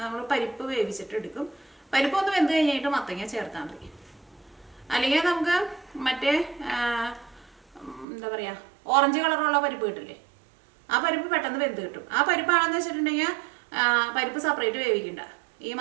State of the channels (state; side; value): drops out; left; at 8.1 s